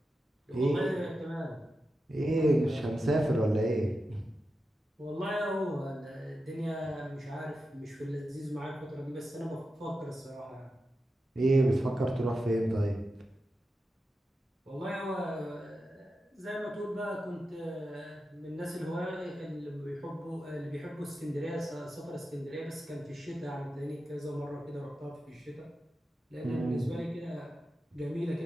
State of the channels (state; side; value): normal; both; correlation 0.90